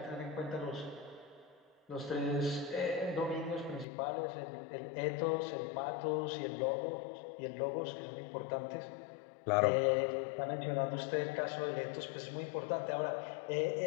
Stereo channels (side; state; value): right; drops out; at 3.9 s